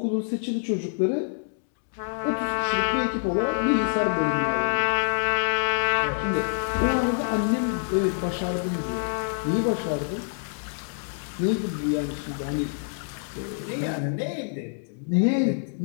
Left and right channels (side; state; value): right; silent; digital silence